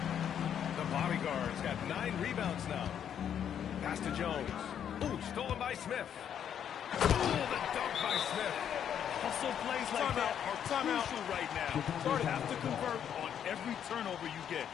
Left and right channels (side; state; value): right; quieter; 9.0 dB